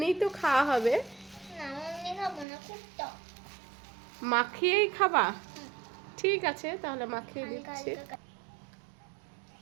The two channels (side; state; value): left; drops out; at 2.5 s